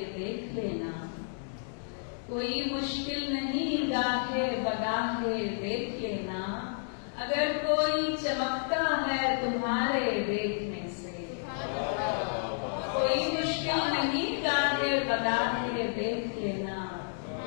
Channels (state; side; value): silent; right; digital silence